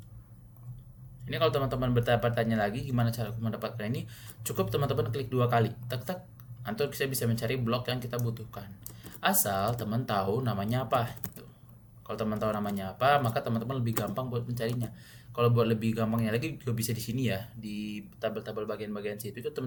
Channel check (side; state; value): both; identical; correlation 1.00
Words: Ini kalau teman-teman bertanya lagi gimana cara mendapatkan ini, cukup teman-teman klik 2 kali, tak tak, nanti kita bisa mencari blok yang kita butuhkan. Asal teman tahu namanya apa. Gitu. Kalau teman tahu namanya apa, maka teman-teman lebih gampang buat mencarinya. Kalau buat lebih gampangnya lagi juga bisa di sini ya, di tabel-tabel bagian-bagian situ itu